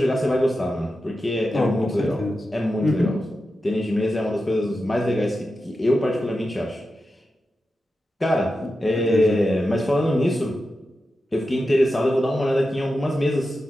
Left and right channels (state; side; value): normal; both; correlation 0.91